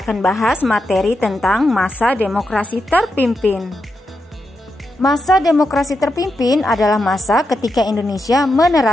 bahas materi tentang masa demokrasi terpimpin. Masa demokrasi terpimpin adalah masa ketika Indonesia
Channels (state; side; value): normal; both; correlation 0.86